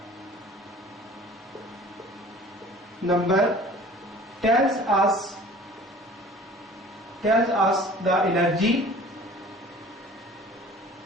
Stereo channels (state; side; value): normal; both; correlation 0.46